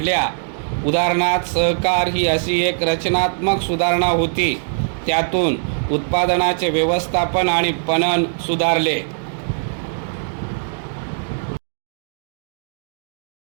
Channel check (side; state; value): left; silent; digital silence